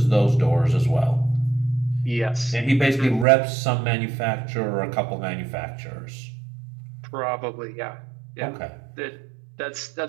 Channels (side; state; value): left; drops out; at 3.2 s